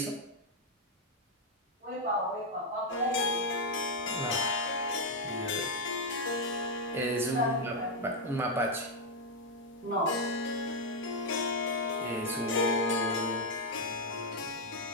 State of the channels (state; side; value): normal; both; correlation 0.00